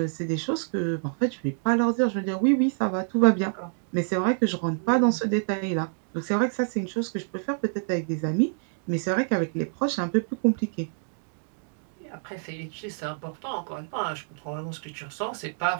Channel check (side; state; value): left; silent; digital silence